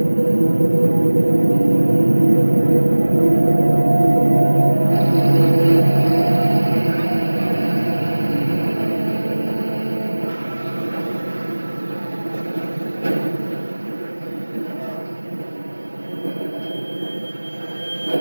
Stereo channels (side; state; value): both; inverted; correlation -1.00